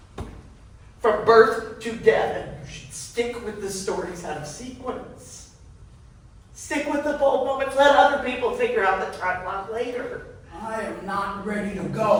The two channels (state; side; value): identical; both; correlation 1.00